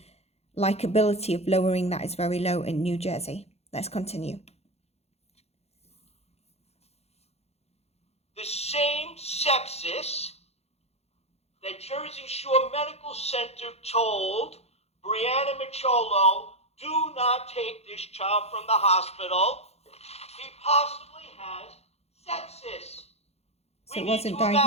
likability of lowering that is very low in New Jersey. Let's continue. The same sepsis that Jersey Shore Medical Center told Brianna MICCIOLO, do not take this child from the hospital. He possibly has sepsis. So We it wasn't need to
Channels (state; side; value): late; right; 0.30 ms